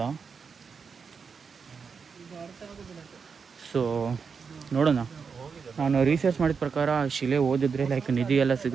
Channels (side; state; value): left; quieter; 5.7 dB